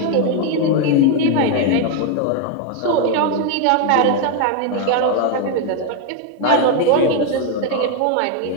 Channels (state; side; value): different; both; correlation 0.01